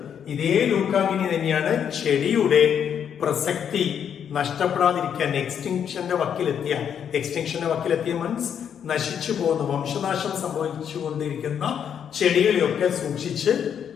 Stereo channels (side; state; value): right; quieter; 8.3 dB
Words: ഇതേ ലൂക്ക ഗിനി തന്നെയാണ് ചെടിയുടെ പ്രസക്തി നഷ്ടപ്പെടാതിരിക്കാൻ എക്സ്റ്റിങ്ഷന്റെ വക്കിലെത്തിയ മീൻസ് നശിച്ചു പോകുന്ന, വംശനാശം സംഭവിച്ചുകൊണ്ടിരിക്കുന്ന ചെടികളെയൊക്കെ സൂക്ഷിച്ച്